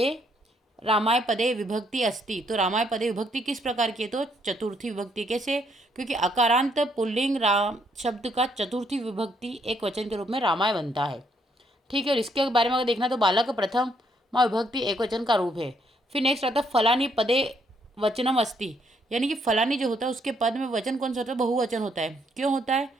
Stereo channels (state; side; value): normal; both; correlation 0.71